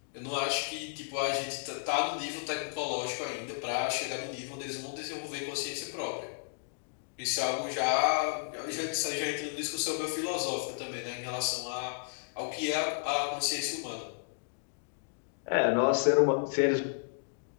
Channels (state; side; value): silent; right; digital silence